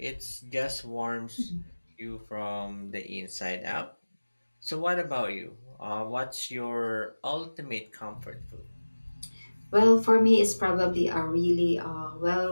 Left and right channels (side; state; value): both; inverted; correlation -1.00